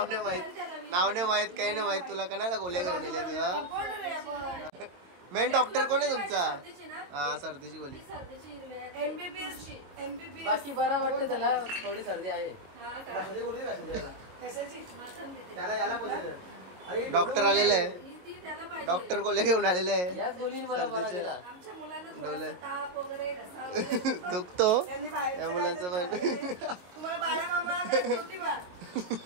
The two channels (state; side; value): late; left; 22 ms